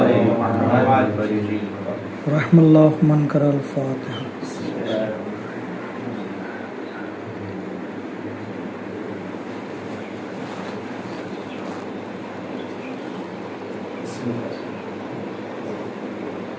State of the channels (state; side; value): identical; both; correlation 1.00